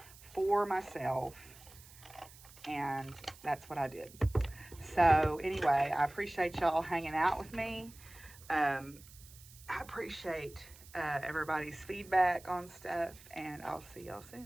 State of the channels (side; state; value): right; noise; hiss, 21 dB below the sound